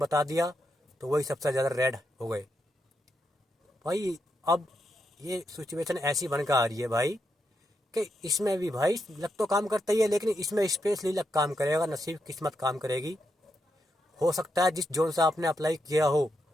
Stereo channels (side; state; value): both; normal; correlation 0.83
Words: दिया तो वही सबसे ज़्यादा रेड हो गए भाई। अब ये सिचुएशन ऐसी बनकर आ रही है भाई कि इसमें भी भाई लक तो काम करता ही है, लेकिन इसमें स्पेशली लक काम करेगा, नसीब किस्मत काम करेगी। हो सकता है जिस जोन से आपने अप्लाई किया हो,